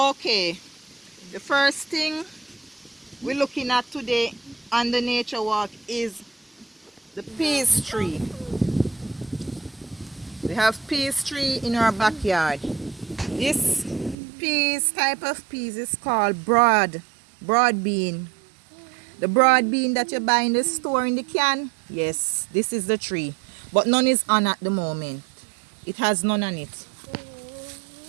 the first thing we're looking at today on the nature walk is the peace tree. We have peas tree in our backyard. This peas type of peas is called broad bean. The broad bean that you buy in the store in the can, yes, this is the tree. But none is on at the moment. It has none on it.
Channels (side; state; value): left; drops out; at 14.2 s